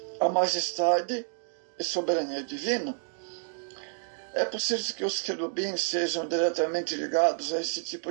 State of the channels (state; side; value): silent; left; digital silence